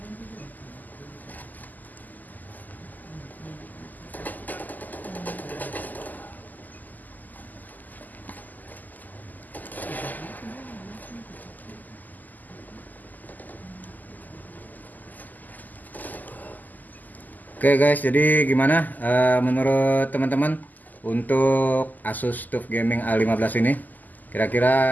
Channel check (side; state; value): right; late; 0.083 ms